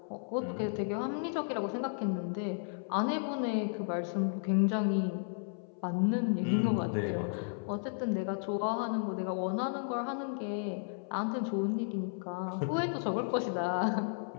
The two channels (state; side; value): silent; right; 55 dB below the other